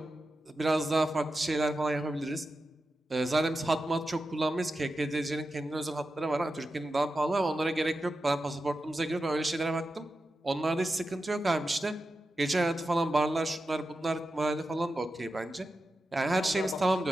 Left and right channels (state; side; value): normal; both; correlation 0.91